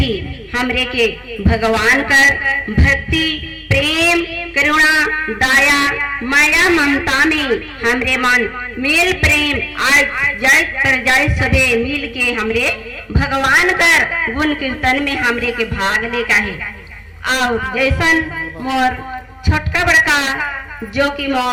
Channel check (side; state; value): both; identical; correlation 1.00